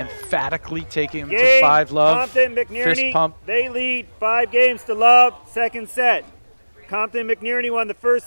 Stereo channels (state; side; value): inverted; both; correlation -1.00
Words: taking him to Game. 5 love. Compton Fist McNerney. pump. They lead 5-0. Second set. Compton McNerney won the